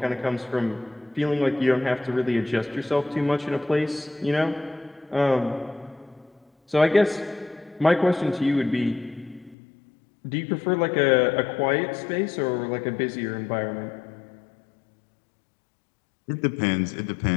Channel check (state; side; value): drops out; right; at 9.6 s